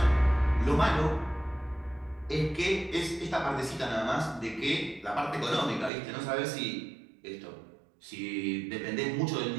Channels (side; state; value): left; drops out; at 5.9 s